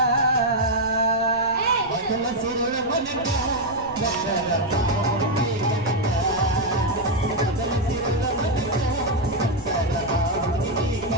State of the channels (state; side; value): noise; left; rumble, 18 dB below the sound